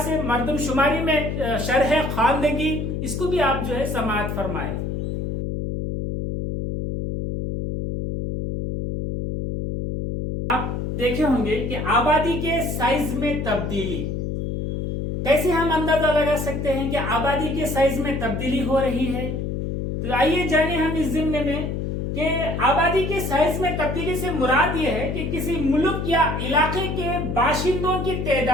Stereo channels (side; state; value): left; noise; hum, 3 dB below the sound